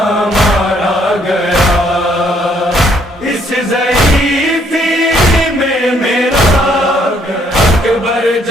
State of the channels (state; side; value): normal; both; correlation 0.67